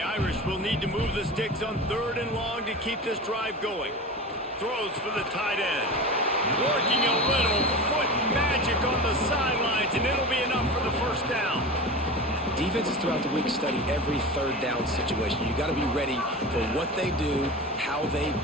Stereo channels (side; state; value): both; normal; correlation 0.30